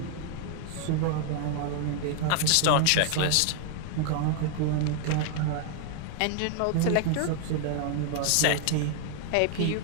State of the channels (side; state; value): both; different; correlation 0.00